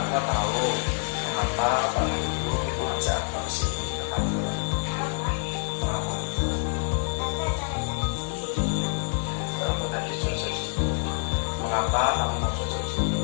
Atwa tahu mengapa Pak Guru mengajak Atwa ke sini ke kantor? Mengapa? Kamu tadi selesai di sini. Mengapa kamu mau selesai di sini?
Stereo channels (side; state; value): right; silent; 60 dB below the other